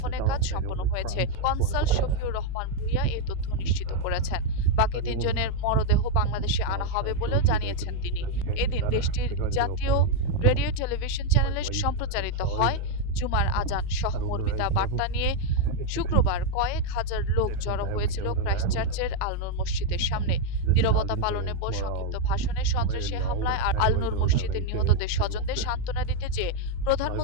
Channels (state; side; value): different; both; correlation 0.01